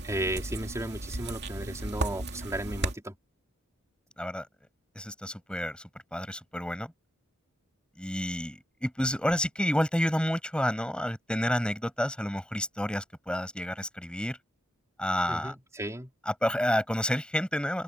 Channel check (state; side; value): normal; both; correlation 0.84